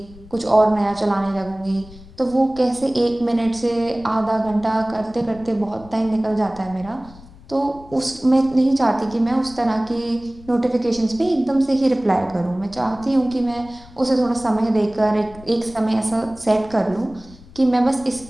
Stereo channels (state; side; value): noise; left; rumble, 21 dB below the sound